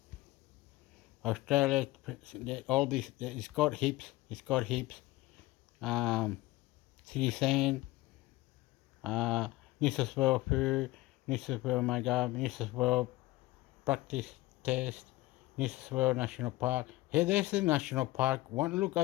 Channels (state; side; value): quieter; right; 18.8 dB